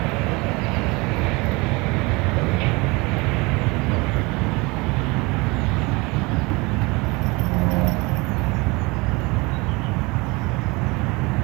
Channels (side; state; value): left; quieter; 25.3 dB